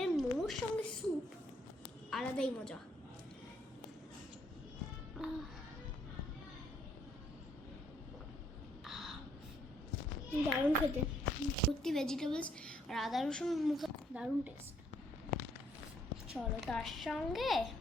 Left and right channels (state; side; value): normal; both; correlation 0.69